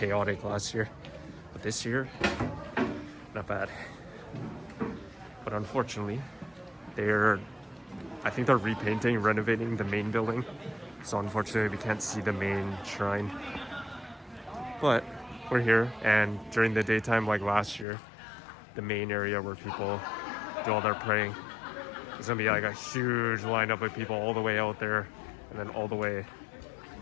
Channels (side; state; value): right; drops out; at 17.9 s